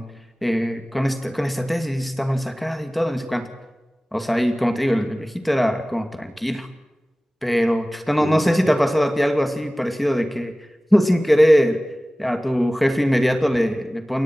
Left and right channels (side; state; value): both; normal; correlation 0.98